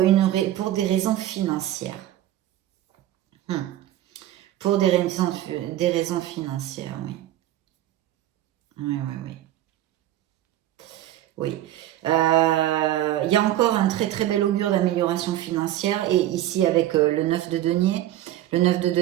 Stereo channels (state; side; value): quieter; left; 13.5 dB